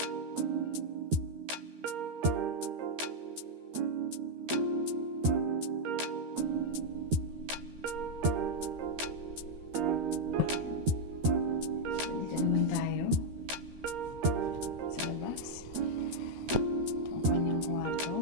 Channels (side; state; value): left; late; 13 ms